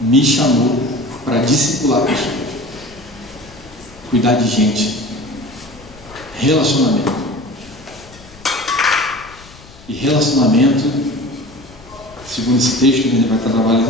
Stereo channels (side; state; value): left; noise; rumble, 22 dB below the sound